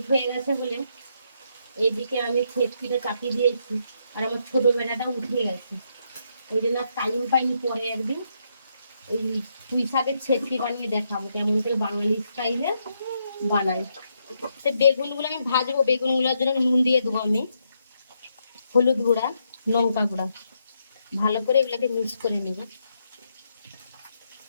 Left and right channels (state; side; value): inverted; both; correlation -0.78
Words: হয়ে গেছে বলে। এইদিকে আমি ছেটকিটা চাপিয়ে দিয়েছি, আর আমার ছোট বেলাটা উঠে গেছে, ওই জন্য টাইম পাইনি। পরে একদিন এই পুঁই শাকের ছেটকি বানিয়ে দেখাবো কেমন করে বাঙালি স্টাইলে বানাই। তো বেগুনগুলো আমি ভাজবো, বেগুনগুলোর জন্য নুন দিয়ে দেবো আমি, হলুদ গুঁড়া, লঙ্কা গুঁড়া। ভালো করে এগুলোকে মিক্স করে নেব।